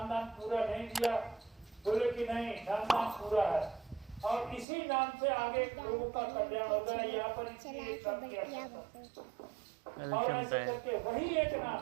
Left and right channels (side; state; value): left; drops out; at 4.7 s